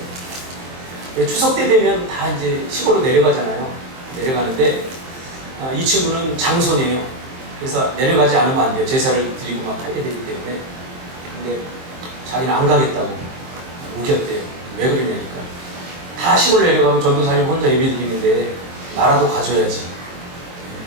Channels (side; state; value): left; late; 23 ms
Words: 추석 때 되면 다 이제 시골로 내려가잖아요. 내려가는데 이 친구는 장손이에요. 그래서 내려가지 않으면 안 돼요. 제사를 드리고 막 하게 되기 때문에. 근데 자기는 안 가겠다고 우겼대요. 왜 그러냐니까 다 시골 내려가면 전도사님 혼자 예배 드리는데 나라도 가줘야지.